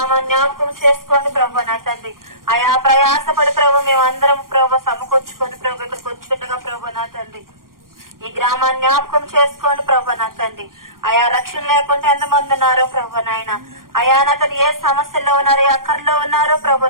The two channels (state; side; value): late; left; 0.91 ms